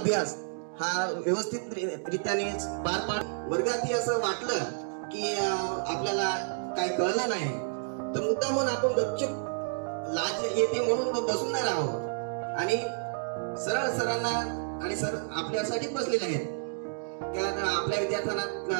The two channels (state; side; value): silent; left; digital silence